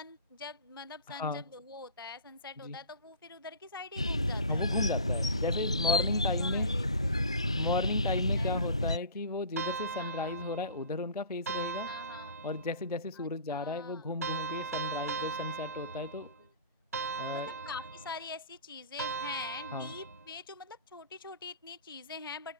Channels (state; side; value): inverted; both; correlation -0.40